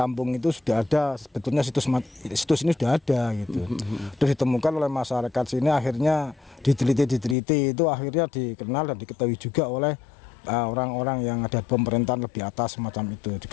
itu sudah ada sebetulnya situs ini sudah ada gitu. Terus ditemukan oleh masyarakat sini, akhirnya diteliti itu akhirnya dikenal dan diketahui juga oleh orang-orang yang ada pemerintahan lebih atas semacam itu,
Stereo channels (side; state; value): right; drops out; at 7.4 s